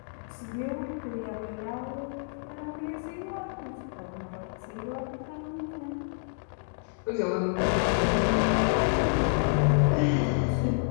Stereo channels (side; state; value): right; silent; digital silence